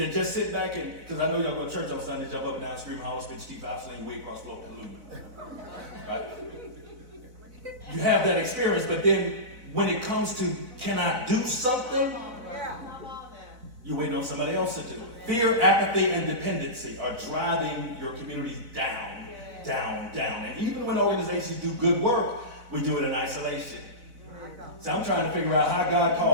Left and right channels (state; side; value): late; left; 4.0 ms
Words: sit back and, because I know y'all go to church on Sunday, jump up and down, scream, holler, spit, Steve House, sling, way across the right? You have that experience, but then when it comes to, can I do something? You're waiting on somebody else to do it. Fear, apathy, and dependency are driving your communities down, down, down. And even when organizations do good work, we do it in isolation. So I'm trying to figure out how God